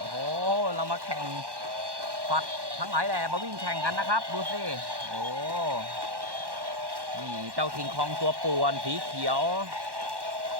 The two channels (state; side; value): late; left; 1.1 ms